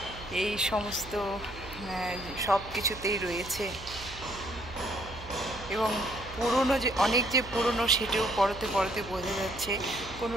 এই সমস্ত সব কিছুতেই রয়েছে। এবং পুরনো যে অনেক যে পুরনো সেটাও পরতে পরতে বোঝা যাচ্ছে, কোনো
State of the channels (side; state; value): right; noise; hum, 15 dB below the sound